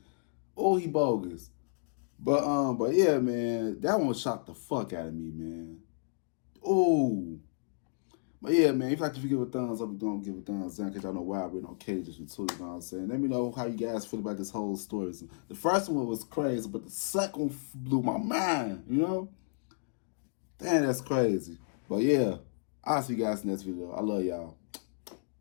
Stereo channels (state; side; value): silent; right; digital silence